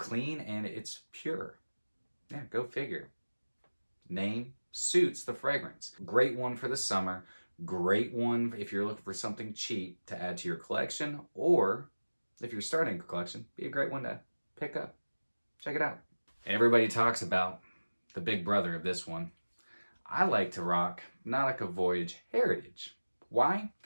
and it's pure. Yeah, go figure. Name suits the fragrance. Great one for the summer. Great one if you're looking for something cheap to add to your collection, or if you're starting a collection, be a great one to pick up. Check it out. Everybody talks about the big brother of this one. I like to rock Nautica Voyage Heritage. Why?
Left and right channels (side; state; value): both; inverted; correlation -1.00